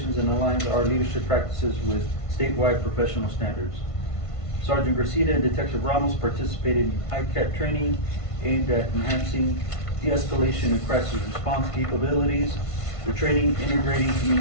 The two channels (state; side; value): late; right; 1.5 ms